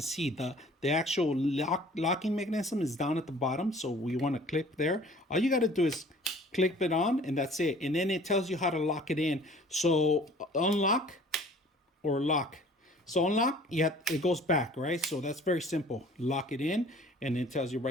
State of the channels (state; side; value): normal; both; correlation 0.51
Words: see, the actual locking mechanism is down at the bottom. So we want to click there. All you got to do is click it on, and that's it. And then it tells you how to lock it in. So unlock or lock. So unlock, it goes back, right? So that's very simple. Lock it in, and it tells you